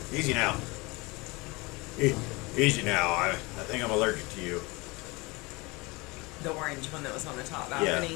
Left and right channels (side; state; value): right; quieter; 24.8 dB